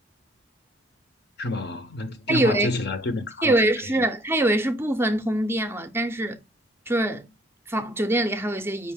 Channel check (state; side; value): normal; both; correlation 0.60